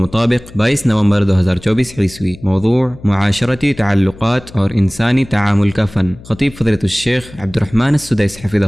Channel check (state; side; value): noise; left; hum, 19 dB below the sound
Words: 22 نومبر 2024 عیسوی۔ موضوع معاشرتی تعلقات اور انسانی تعامل کا فن۔ خطیب فضیلۃ الشیخ عبد الرحمن السدیس حفظہ